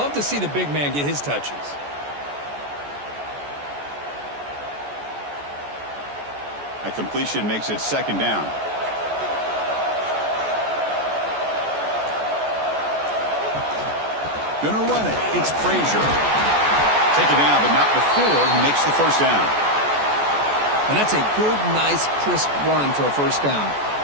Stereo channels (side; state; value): left; late; 14 ms